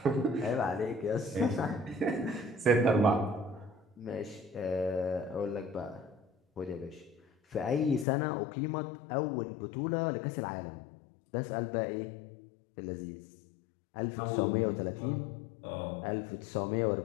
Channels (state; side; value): drops out; right; at 8.1 s